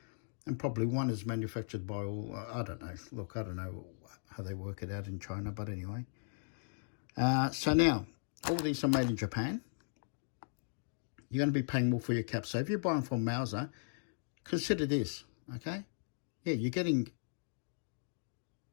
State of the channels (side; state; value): right; silent; digital silence